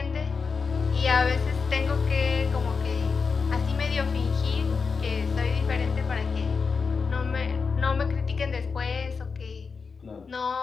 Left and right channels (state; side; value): quieter; right; 5.1 dB